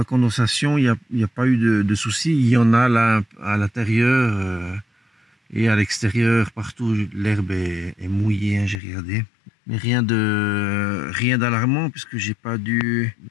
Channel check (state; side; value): drops out; right; at 8.8 s